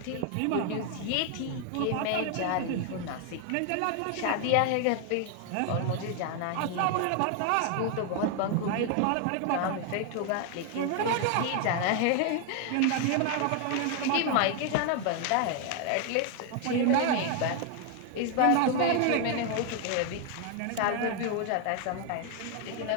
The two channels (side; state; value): both; different; correlation 0.00